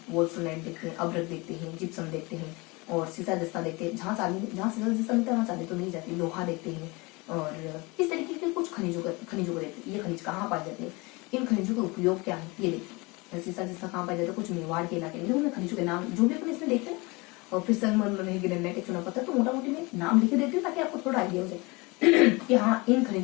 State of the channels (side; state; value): right; quieter; 25.7 dB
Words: वोल्फ्राइट देखते हैं, अभ्रक देखते हैं, जिप्सम देखते हैं और सीसा जस्ता देखते हैं। जहाँ सीसा जस्ता मिलता है वहाँ चांदी तो नहीं जाती। लोहा देखते हैं और इस तरीके के कुछ खनिजों को देखते हैं। ये खनिज कहाँ पाए जाते हैं, इन खनिजों का उपयोग क्या है, ये देखते हैं। सीसा जस्ता कहाँ पाया जाता है? कुछ मेवाड़ के इलाके में। देखो मैं खनिजों के नाम जो भी अपन इसमें देखते हैं ना, और फिर संगमरमर है, ग्रेनाइट, चूना पत्थर, तो मोटा मोटी में नाम लिख देती हूँ ताकि आपको थोड़ा आइडिया हो जाए कि हाँ इन